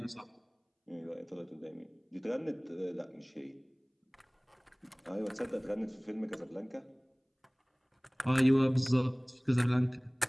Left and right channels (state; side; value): identical; both; correlation 1.00